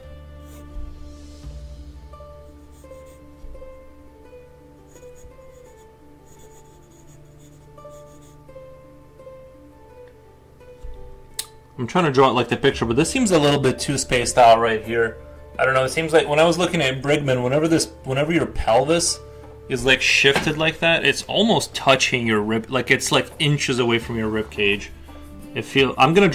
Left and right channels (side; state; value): both; identical; correlation 1.00